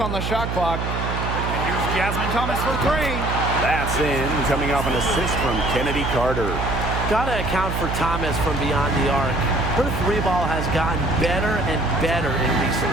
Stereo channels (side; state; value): right; noise; hum, 3 dB below the sound